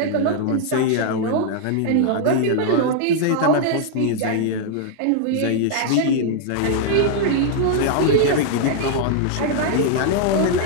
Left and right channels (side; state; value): both; different; correlation -0.01